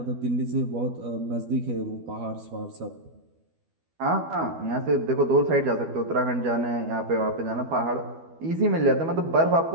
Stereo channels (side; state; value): left; late; 12 ms